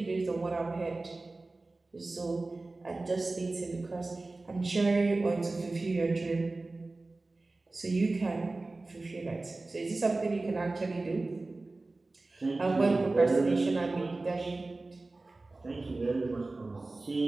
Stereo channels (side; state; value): left; quieter; 3.2 dB